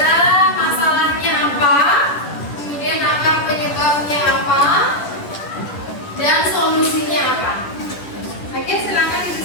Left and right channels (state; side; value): late; right; 10 ms